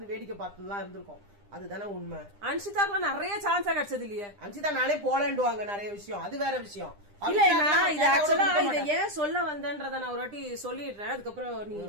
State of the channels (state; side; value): late; left; 9.9 ms